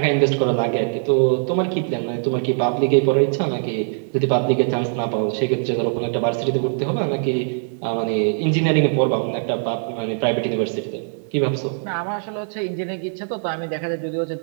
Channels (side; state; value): left; silent; digital silence